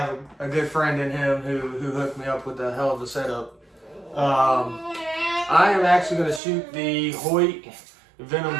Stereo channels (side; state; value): left; drops out; at 6.4 s